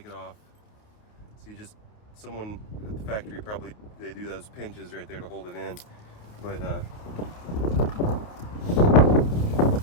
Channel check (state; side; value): late; right; 29 ms